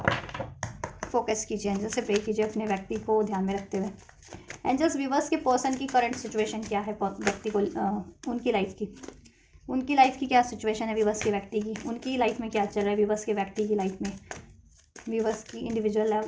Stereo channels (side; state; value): both; identical; correlation 1.00